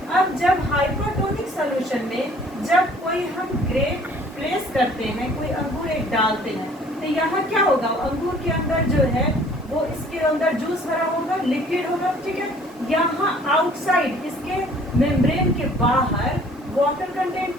अब जब हाइपरटोनिक सॉल्यूशन में जब कोई हम ग्रेप प्लेस करते हैं, कोई अंगूर एक डालते हैं, तो यहाँ क्या होगा? अंगूर के अंदर जो है वो इसके अंदर जूस भरा होगा, लिक्विड होगा, ठीक है। यहाँ आउटसाइड इसके मेम्ब्रेन के बाहर वाटर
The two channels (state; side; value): normal; both; correlation 0.55